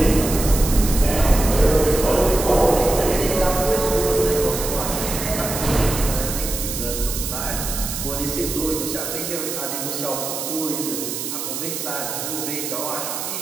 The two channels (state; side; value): noise; right; hiss, 5 dB below the sound